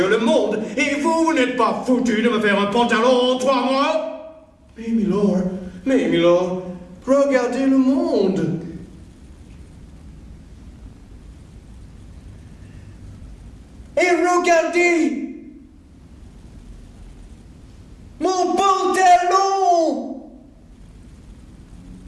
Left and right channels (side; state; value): both; identical; correlation 1.00